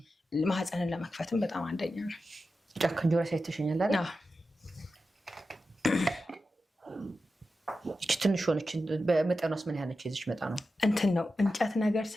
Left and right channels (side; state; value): both; normal; correlation 0.91